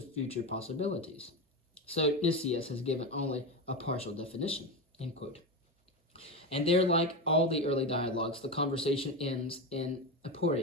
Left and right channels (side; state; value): both; normal; correlation 0.17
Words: future possibilities." So Nicias has given only a partial definition, end quote. And there, like all the early dialogues, the conversation ends in